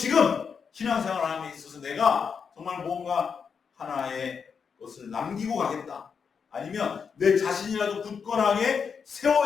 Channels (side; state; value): right; quieter; 6.2 dB